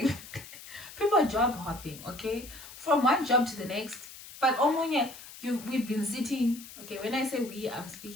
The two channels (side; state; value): left; noise; hiss, 16 dB below the sound